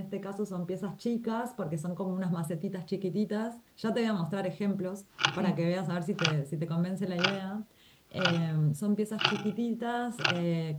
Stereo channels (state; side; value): identical; both; correlation 1.00